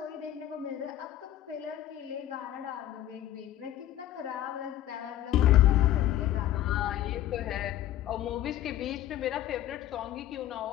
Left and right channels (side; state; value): right; quieter; 12.7 dB